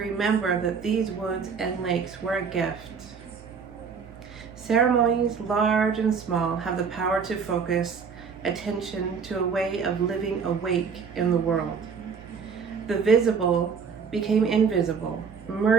that these woods and lakes were a gift. Ceremonies, large and small, have the power to focus attention to a way of living awake in the world. The visible became invisible,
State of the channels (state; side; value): quieter; left; 5.9 dB